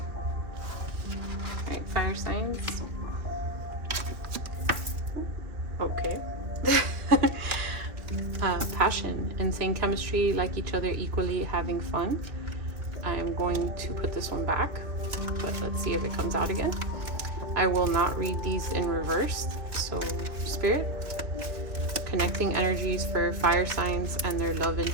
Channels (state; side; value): late; left; 2.3 ms